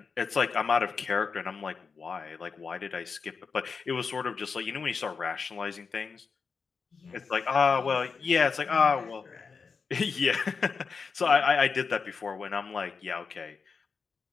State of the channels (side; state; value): right; quieter; 5.3 dB